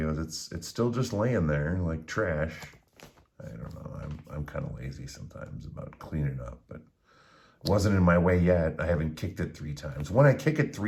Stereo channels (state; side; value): identical; both; correlation 1.00